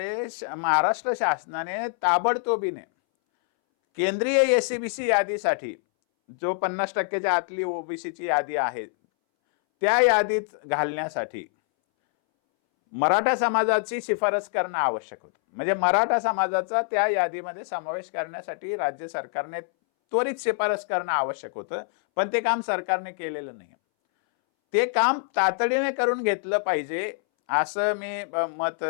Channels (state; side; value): silent; right; 61 dB below the other